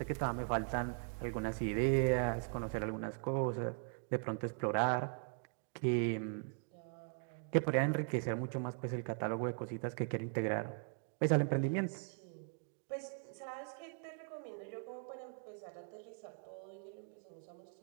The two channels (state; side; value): silent; left; 51 dB below the other